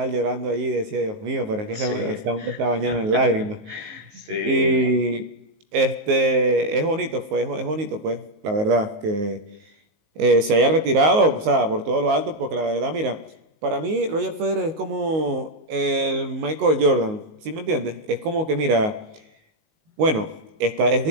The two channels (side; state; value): left; late; 19 ms